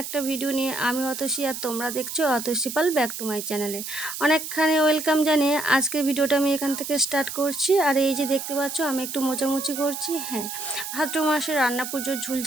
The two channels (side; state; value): right; noise; hiss, 7 dB below the sound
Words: একটা ভিডিও নিয়ে আমি অতসী, আর তোমরা দেখছো অতসী পাল ব্যাক টু মাই চ্যানেলে। অনেকখানি ওয়েলকাম জানিয়ে আজকের ভিডিওটা আমি এখান থেকে স্টার্ট করছি। আর এই যে দেখতে পাচ্ছ আমি একটু মোচামুচি করছি। হ্যাঁ, ভাদ্র মাসে রান্না পুজোর ঝুল